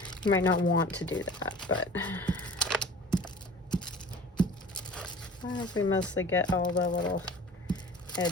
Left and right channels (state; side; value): normal; both; correlation 0.43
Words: You might not want to do that, but I hope we mostly get all the little